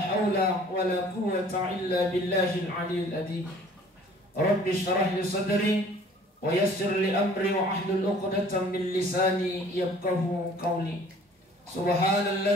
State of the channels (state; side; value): normal; both; correlation 0.52